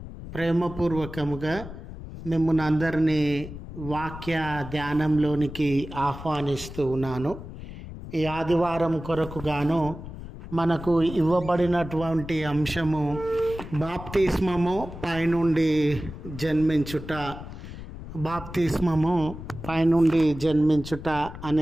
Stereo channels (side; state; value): left; noise; rumble, 12 dB below the sound